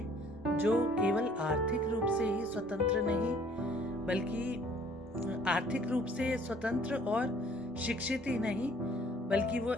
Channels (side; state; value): both; normal; correlation 0.57